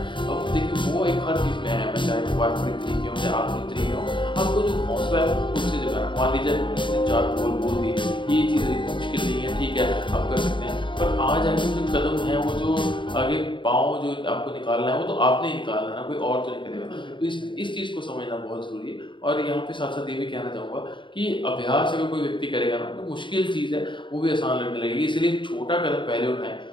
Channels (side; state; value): right; late; 0.23 ms